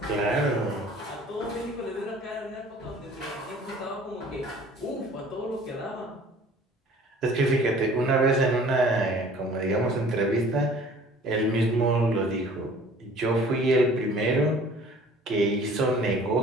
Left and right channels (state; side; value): normal; both; correlation 0.50